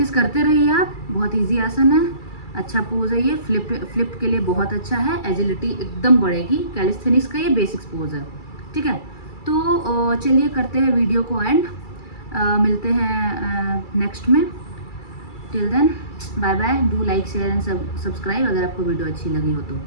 करते रहिए आप, बहुत इजी आसन है, अच्छा पोज है ये, फ्लिप के लिए बहुत अच्छा है, एजिलिटी एकदम बढ़ेगी। कैलिस्थेनिक्स का ये बेसिक्स पोज है, ठीक है। तो चलिए करते हैं वीडियो को एंड, मिलते हैं नेक्स्ट में। Till then bye bye, do like share and subscribe अगर आपको वीडियो अच्छी लगी हो तो,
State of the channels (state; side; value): late; right; 2.3 ms